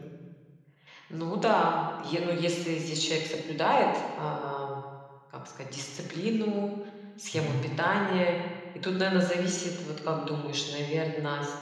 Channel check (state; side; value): identical; both; correlation 1.00